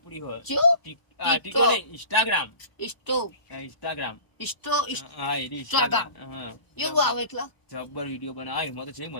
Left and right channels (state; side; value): late; right; 1.0 ms